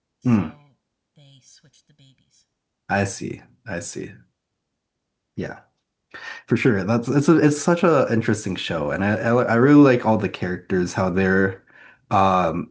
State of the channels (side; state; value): both; identical; correlation 1.00